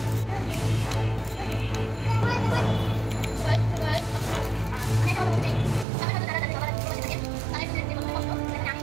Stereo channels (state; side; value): drops out; left; at 5.9 s